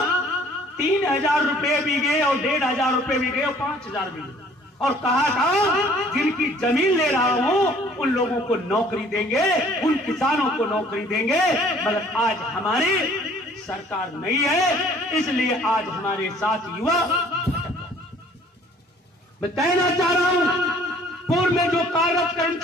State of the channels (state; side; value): normal; both; correlation 0.55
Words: 3000 रुपए बीघे, और 1500 रुपए बीघे, और 5000 बीघे। और कहा था जिनकी जमीन ले रहा हूं उन लोगों को नौकरी देंगे, उन किसानों को नौकरी देंगे। मगर आज हमारी सरकार नहीं है, इसलिए आज हमारे साथ युवा। मैं कहना चाह रहा हूं, पूर्व में जो कार्यरत